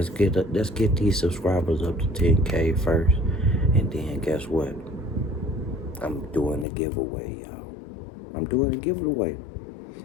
get these subscribers up to 10K first. And then guess what? I'm doing a giveaway, y'all. I'm doing a giveaway.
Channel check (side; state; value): right; drops out; at 6.7 s